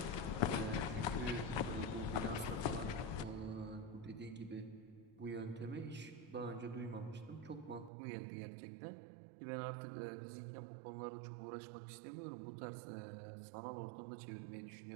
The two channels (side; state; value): left; drops out; at 7.9 s